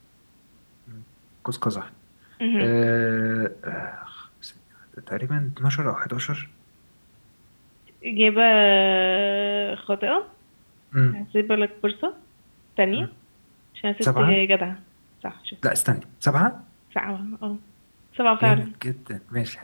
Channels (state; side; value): inverted; both; correlation -1.00